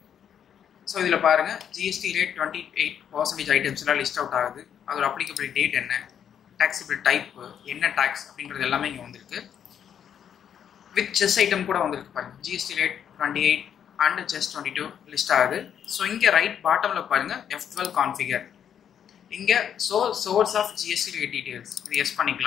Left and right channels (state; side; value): quieter; right; 8.8 dB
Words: ஸோ இதில் பாருங்கள், ஜிஎஸ்டி ரேட் 28% ஐட்டம்ஸ்லாம் லிஸ்ட் அவுட் ஆகுது. அதோட அப்ளிகபிள் டேட் என்ன, டேக்ஸபிள் டைப் என்ன டேக்ஸ் அப்படின்றது எல்லாமே இங்கே வந்திருக்கு. வித் செஸ் ஐட்டம் கூட வந்திருக்கு பாருங்கள். GST rate 28 and cess 22 list ஆகுது. ஸோ இங்கே ரைட் பாட்டமில் பாருங்கள், F12 கான்ஃபிகர். இங்கே source of GST rate details இது எஸ்